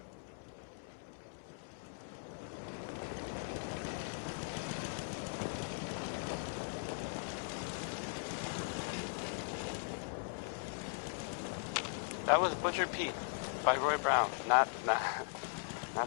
That was Butcher Pete by Roy Brown, not the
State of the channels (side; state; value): right; silent; digital silence